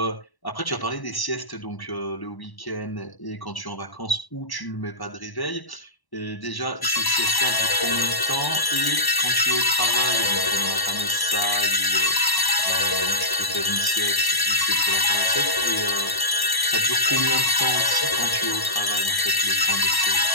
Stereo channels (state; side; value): late; right; 1.1 ms